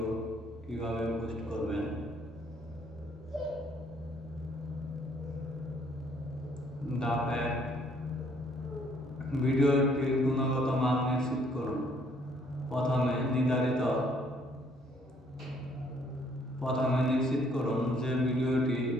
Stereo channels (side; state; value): both; normal; correlation 0.64